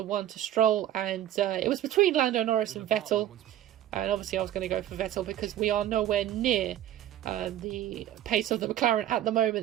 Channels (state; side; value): quieter; left; 12.2 dB